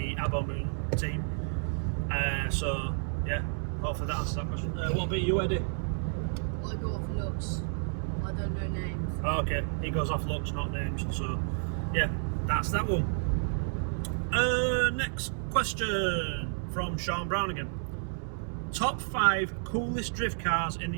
Abo Moon team. So yeah, hopefully that answers that question. What about you, Eddie? I go off looks. I don't know names. Oh, okay, he goes off looks, not names. So yeah, that's that one. Next question from Sean Brown again. Top 5 coolest drift cars in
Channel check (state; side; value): silent; left; 57 dB below the other